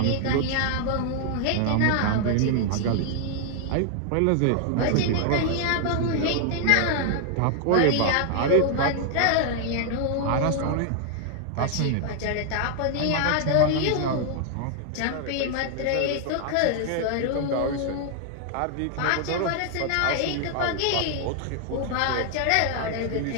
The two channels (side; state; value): both; different; correlation 0.00